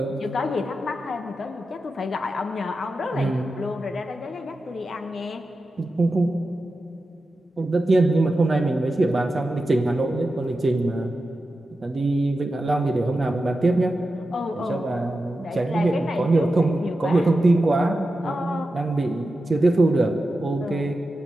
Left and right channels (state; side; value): normal; both; correlation 0.91